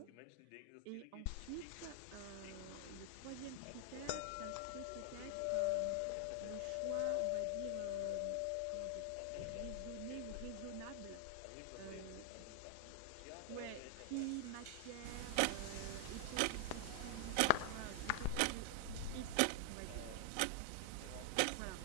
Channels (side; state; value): both; different; correlation 0.00